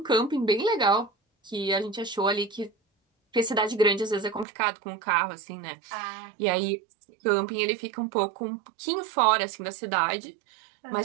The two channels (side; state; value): left; drops out; at 4.5 s